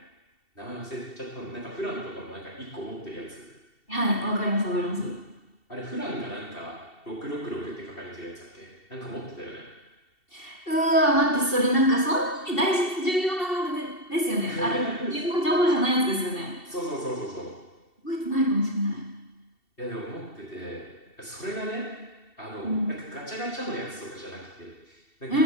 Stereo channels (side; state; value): right; late; 2.7 ms